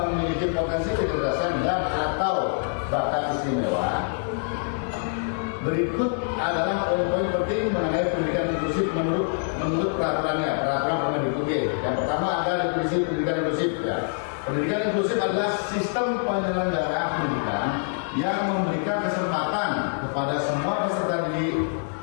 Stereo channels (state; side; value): silent; right; digital silence